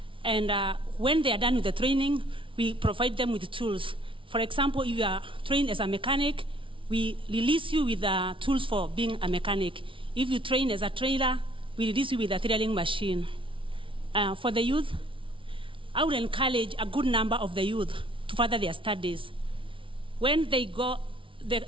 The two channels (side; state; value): left; late; 0.25 ms